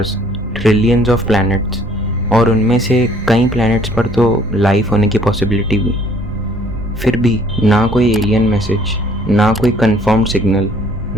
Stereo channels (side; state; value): both; normal; correlation 0.59